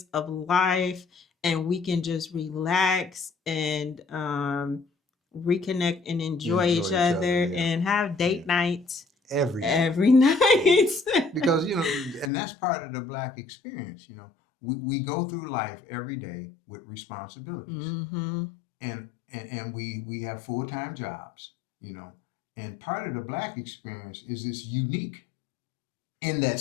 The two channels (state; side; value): drops out; right; at 12.3 s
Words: of life, and we can just relax and reconnect and enjoy Enjoy each each other. other Yeah. and have date Yeah. nights Every night. every night. Because and that's part of the black experience. We go through life every day with responsibilities, Mm-hmm. and we have full-time jobs, and part of the black experience is this unique in that